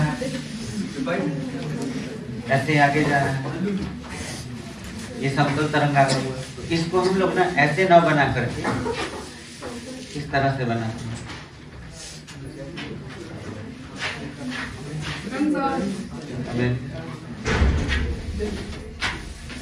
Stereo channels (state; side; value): identical; both; correlation 1.00